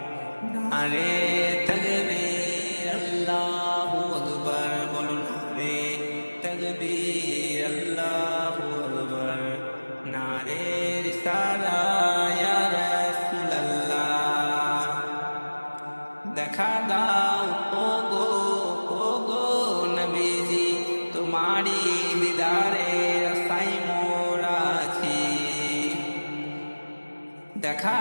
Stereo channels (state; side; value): inverted; both; correlation -1.00